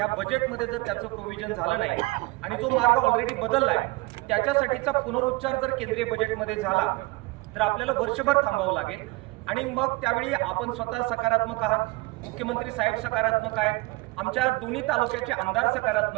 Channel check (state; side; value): quieter; left; 24.1 dB